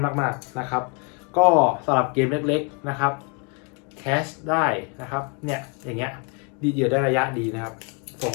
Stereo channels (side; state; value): right; quieter; 35.4 dB